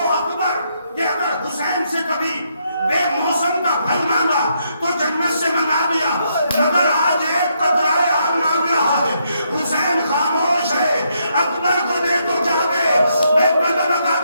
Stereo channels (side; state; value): both; inverted; correlation -0.76